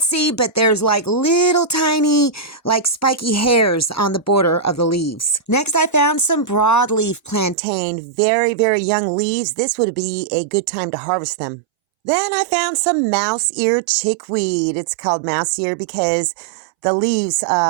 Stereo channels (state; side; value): drops out; left; at 7.6 s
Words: see, but there's like little tiny, like spiky hairs on the border of the leaves. Next, I found some broadleaf plantain, very, very young leaves. This would be a good time to harvest them. Then I found some mouse-ear chickweed. It's called mouse-ear because the leaves